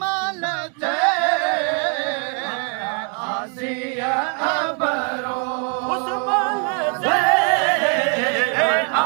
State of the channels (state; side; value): quieter; left; 39.9 dB